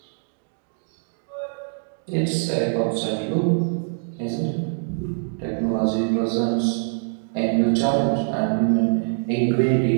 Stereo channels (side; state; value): left; silent; digital silence